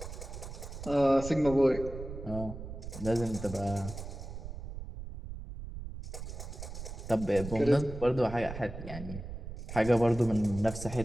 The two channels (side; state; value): right; noise; rumble, 10 dB below the sound